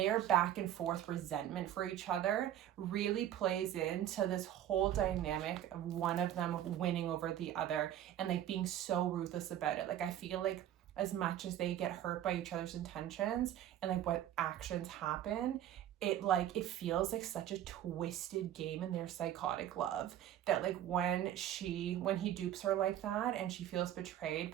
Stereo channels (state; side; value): quieter; left; 11.6 dB